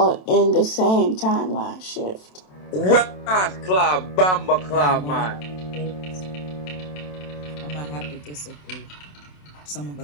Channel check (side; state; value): right; late; 27 ms